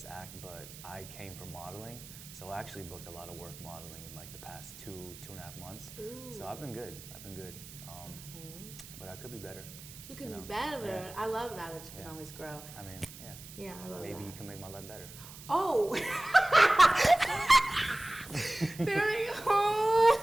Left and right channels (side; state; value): right; noise; hiss, 16 dB below the sound